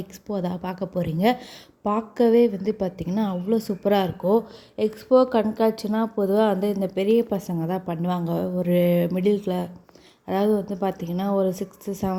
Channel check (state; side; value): identical; both; correlation 1.00